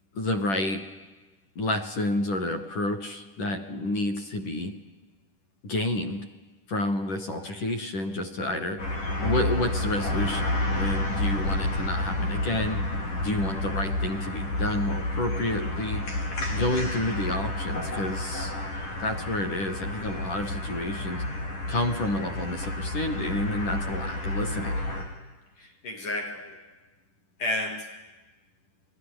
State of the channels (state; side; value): late; right; 10 ms